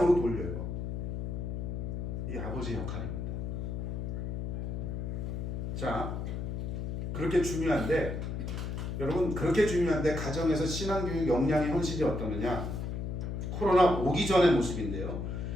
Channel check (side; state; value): left; noise; hum, 3 dB below the sound